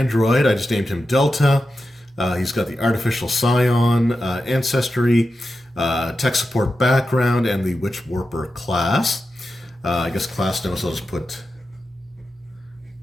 I just named him Delta. He's got the artificial scion ancestry, tech support background, and the witch warper class. I guess class now, so I'll just put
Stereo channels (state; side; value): normal; both; correlation 0.90